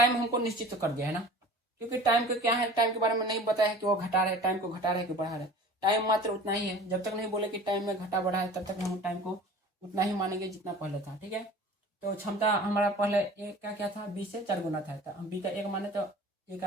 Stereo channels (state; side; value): normal; both; correlation 0.42